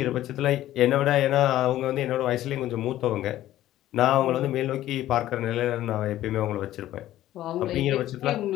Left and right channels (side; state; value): right; quieter; 13.8 dB